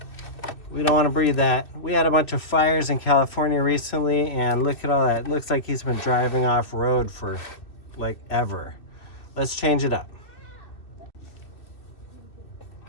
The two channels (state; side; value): late; right; 2.6 ms